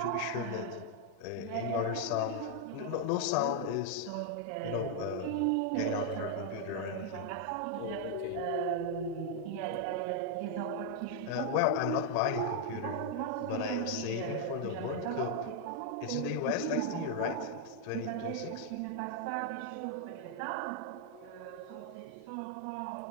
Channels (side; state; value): both; different; correlation 0.00